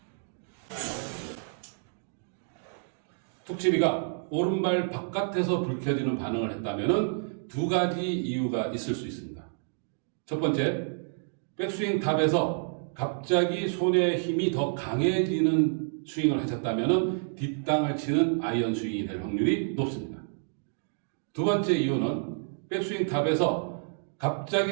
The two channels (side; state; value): left; silent; digital silence